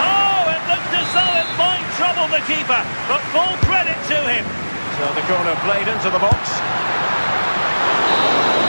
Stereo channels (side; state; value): both; inverted; correlation -1.00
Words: it looked as though it might trouble the keeper, but full credit to him. So the corner played into the box.